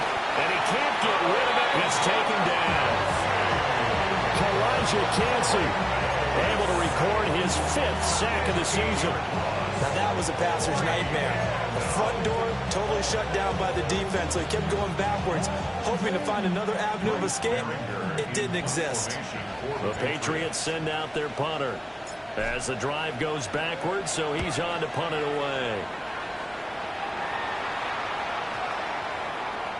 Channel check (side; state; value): both; identical; correlation 1.00